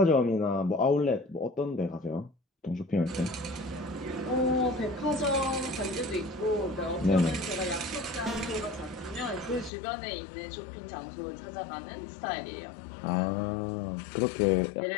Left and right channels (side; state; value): right; drops out; at 9.7 s